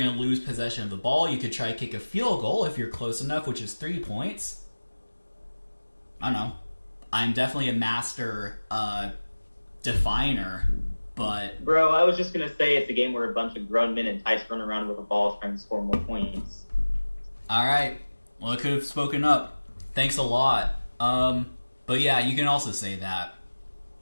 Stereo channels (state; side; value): inverted; both; correlation -1.00